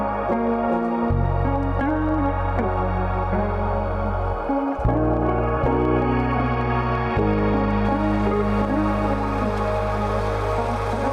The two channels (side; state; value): both; identical; correlation 1.00